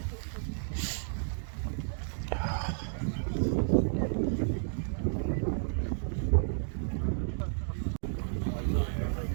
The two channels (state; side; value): silent; left; digital silence